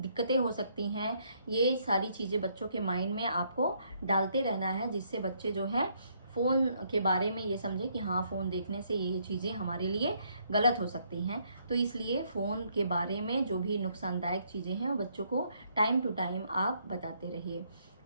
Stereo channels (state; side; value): inverted; both; correlation -0.70